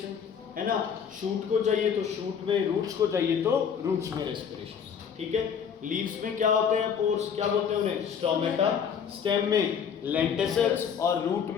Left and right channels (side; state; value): right; quieter; 7.3 dB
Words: है ना। शूट को चाहिए तो शूट में, रूट्स को चाहिए तो रूट्स में रेस्पिरेशन, ठीक है। लीव्स में क्या होते हैं? पोर्स, क्या बोलते हैं उन्हें? स्टोमेटा। स्टेम में लेंटिसल्स और रूट